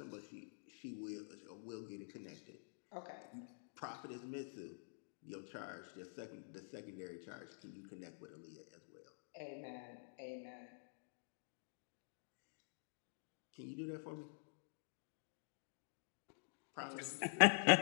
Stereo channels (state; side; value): silent; right; digital silence